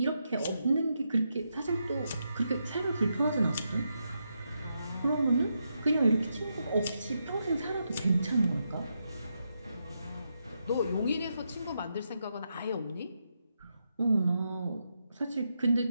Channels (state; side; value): inverted; both; correlation -0.83